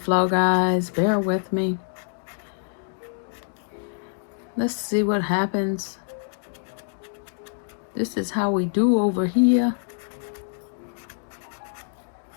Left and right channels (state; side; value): silent; right; digital silence